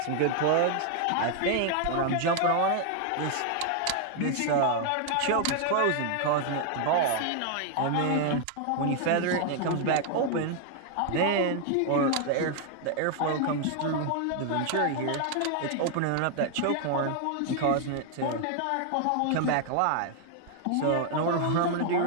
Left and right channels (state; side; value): different; both; correlation 0.00